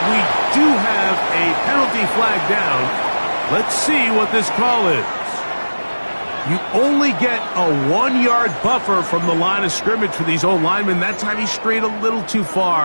We do have a penalty flag down. Let's see what this call is. You only get a 1-yard buffer from the line of scrimmage for these old linemen. That time he strayed a little too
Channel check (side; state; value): both; inverted; correlation -1.00